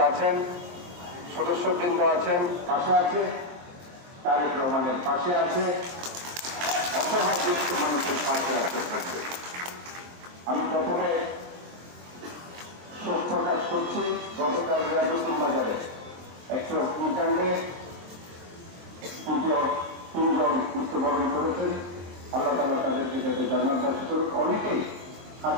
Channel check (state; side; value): late; left; 23 ms